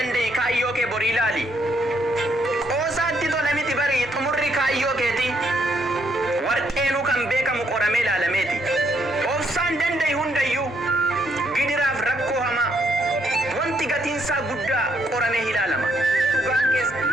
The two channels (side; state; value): both; normal; correlation 0.73